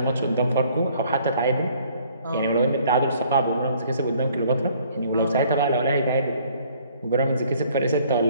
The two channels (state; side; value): inverted; both; correlation -0.59